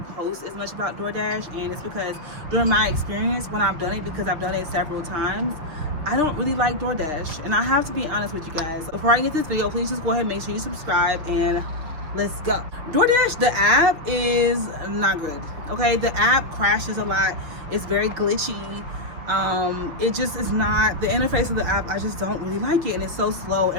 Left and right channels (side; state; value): left; late; 6.5 ms